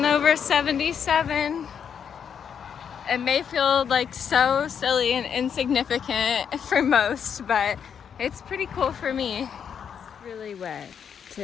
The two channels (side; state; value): right; quieter; 7.6 dB